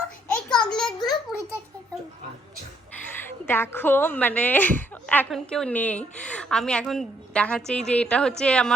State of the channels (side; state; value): both; normal; correlation 0.70